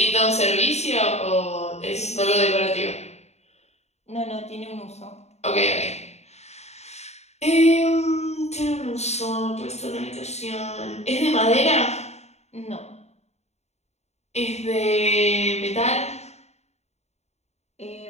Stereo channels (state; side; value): late; right; 0.32 ms